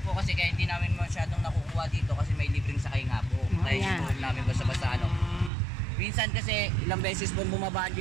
po kasi kaya hindi namin masyadong nakukuha dito kasi may libreng sakay nga po. Kaya ayan. hindi po namin basta-basta ano. Minsan kasi ilang beses po bumaba ang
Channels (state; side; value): drops out; left; at 5.5 s